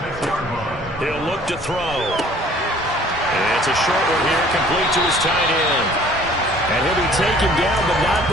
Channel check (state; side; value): normal; both; correlation 0.53